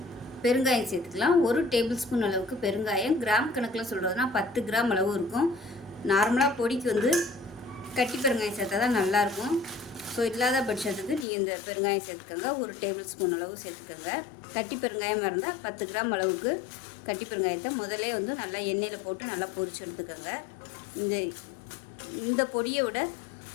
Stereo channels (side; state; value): right; drops out; at 11.2 s